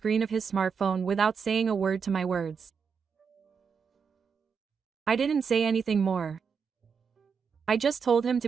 of his smartphone without saying a word to my words. I didn't say anything more. I just told him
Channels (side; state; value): left; quieter; 6.1 dB